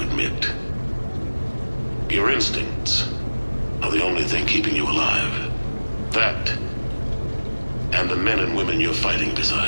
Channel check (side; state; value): both; inverted; correlation -1.00